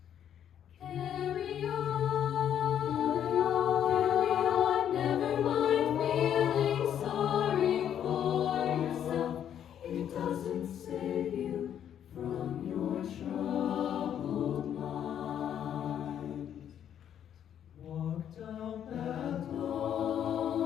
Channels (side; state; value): right; quieter; 9.6 dB